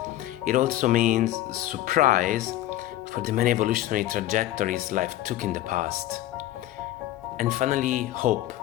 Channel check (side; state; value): right; quieter; 14.6 dB